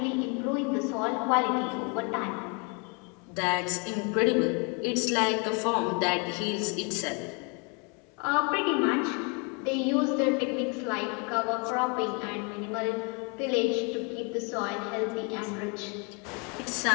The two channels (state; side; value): quieter; right; 33.5 dB